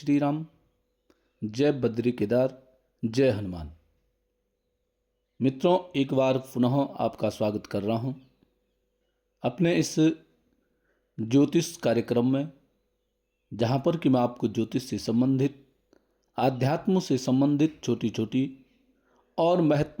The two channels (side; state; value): both; identical; correlation 1.00